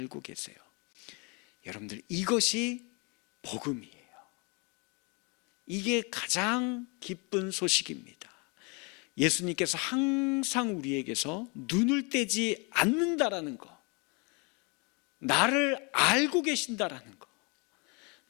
계세요. 여러분들, 이것이 복음이에요. 이게 가장 기쁜 소식입니다. 예수님께서 항상 우리에게서 눈을 떼지 않는다라는 거, 나를 알고 계신다라는 거,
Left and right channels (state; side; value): quieter; right; 30.9 dB